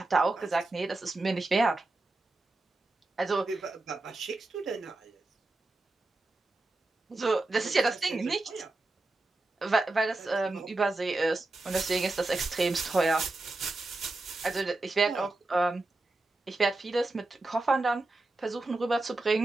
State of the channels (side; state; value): left; quieter; 3.0 dB